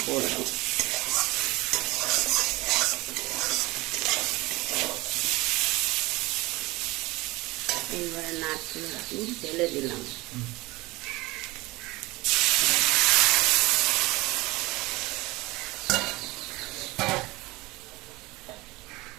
করবো। এইবারে নারকেলের দুধ ঢেলে দিলাম।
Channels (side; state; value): left; quieter; 21.8 dB